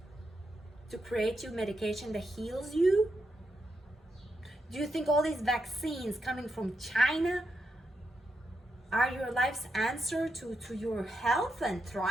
to create you medication that heals you? Do you think all these vaccines coming from China are your life's answer to your health and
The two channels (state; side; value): normal; both; correlation 0.84